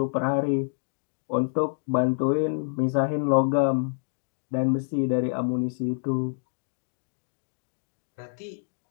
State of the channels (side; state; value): right; silent; digital silence